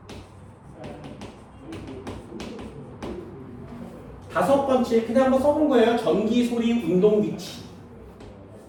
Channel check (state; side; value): identical; both; correlation 1.00